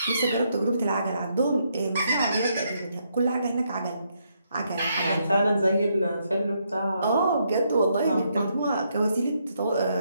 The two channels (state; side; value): inverted; both; correlation -0.76